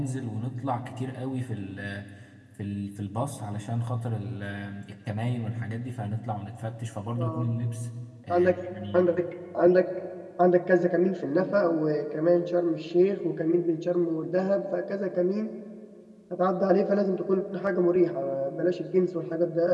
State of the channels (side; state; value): both; identical; correlation 1.00